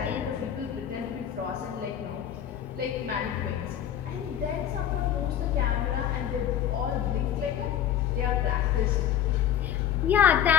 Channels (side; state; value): right; quieter; 10.0 dB